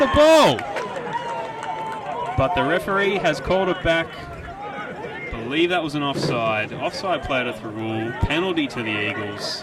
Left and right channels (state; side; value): identical; both; correlation 1.00